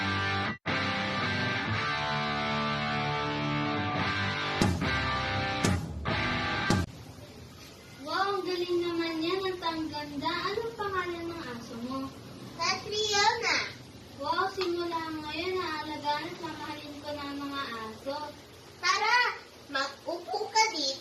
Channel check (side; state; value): both; identical; correlation 1.00